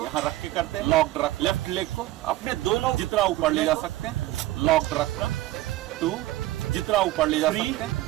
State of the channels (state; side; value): quieter; left; 16.3 dB